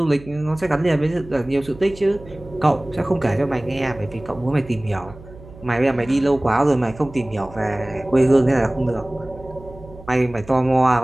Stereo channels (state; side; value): noise; right; hum, 19 dB below the sound